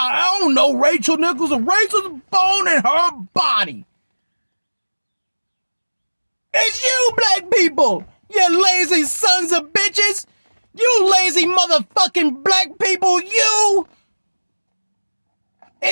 don't know Rachel Nichols. Rachel's bone in her body. It's you, black people. You lazy sons of bitches. You lazy motherfucking black people. You.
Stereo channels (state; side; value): inverted; both; correlation -1.00